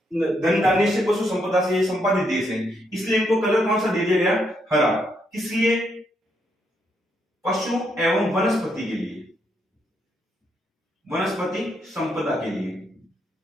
धन धान्य से, पशु संपदा से ये संपादित देश है, इसलिए इनको कलर कौन सा दे दिया गया, हरा। किसलिए, पशु एवं वनस्पति के लिए, वनस्पति संपदा के लिए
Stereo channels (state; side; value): normal; both; correlation 0.77